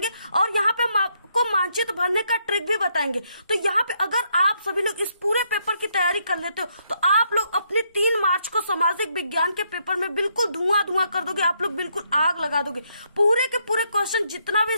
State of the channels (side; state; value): both; inverted; correlation -0.74